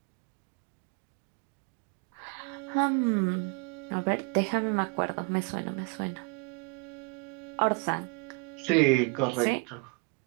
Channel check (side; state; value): left; quieter; 34.3 dB